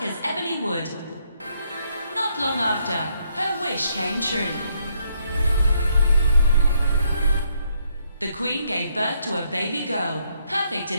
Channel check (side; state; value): both; inverted; correlation -0.73